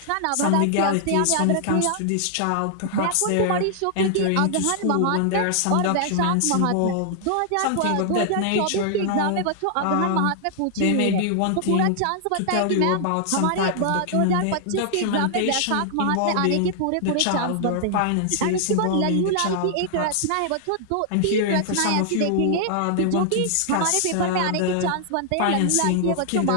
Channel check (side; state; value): both; different; correlation -0.01